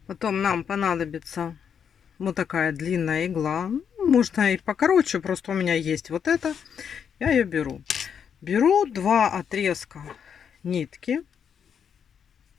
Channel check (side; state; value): right; quieter; 7.6 dB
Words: Потом нам понадобится вот такая длинная игла. Можно и покороче, просто у меня есть вот это. Я ее беру. Беру два отрезка нитки,